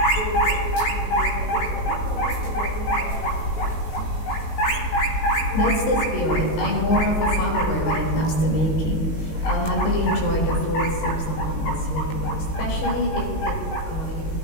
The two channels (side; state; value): right; late; 19 ms